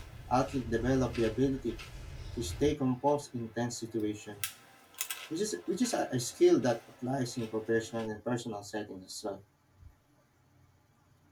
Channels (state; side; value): identical; both; correlation 1.00